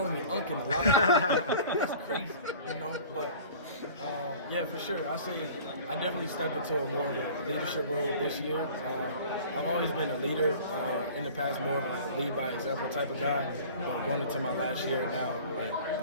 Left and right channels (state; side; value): inverted; both; correlation -0.44